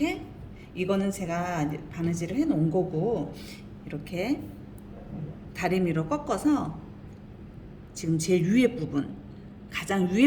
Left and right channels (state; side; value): identical; both; correlation 1.00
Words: 이거는 제가 바느질을 해 놓은 거고, 이렇게 다리미로 꺾어서 지금 제일 위에 부분, 가장